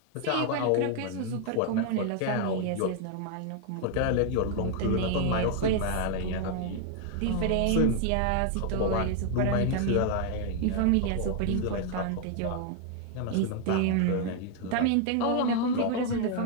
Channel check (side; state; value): both; different; correlation 0.00